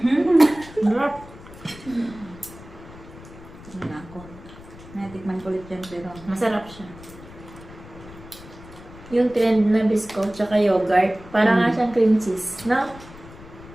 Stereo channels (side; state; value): left; noise; rumble, 18 dB below the sound